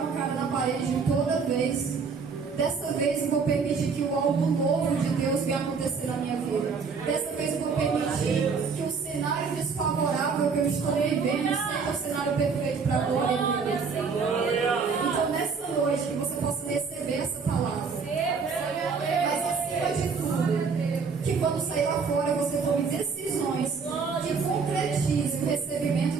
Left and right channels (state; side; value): quieter; left; 5.3 dB